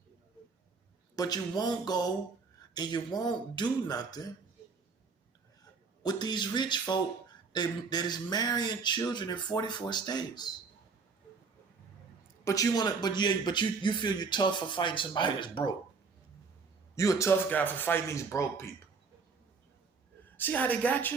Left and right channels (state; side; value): quieter; left; 4.9 dB